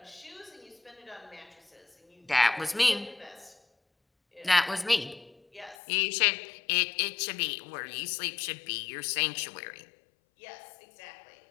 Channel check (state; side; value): drops out; right; at 5.8 s